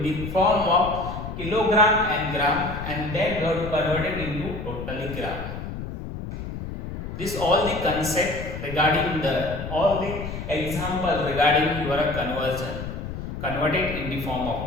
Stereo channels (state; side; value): noise; left; rumble, 7 dB below the sound